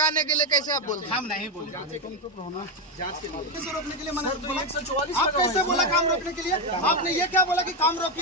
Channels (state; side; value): normal; both; correlation 0.08